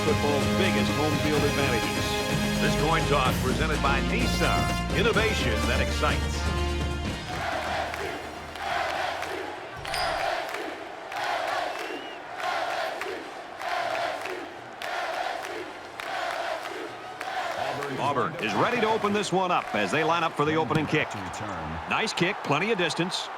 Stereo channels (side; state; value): both; identical; correlation 1.00